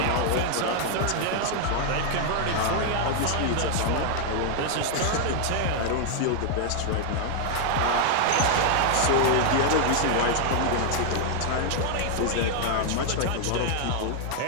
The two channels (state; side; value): different; both; correlation 0.00